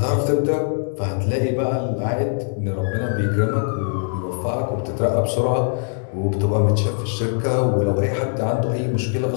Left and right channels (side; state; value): right; silent; digital silence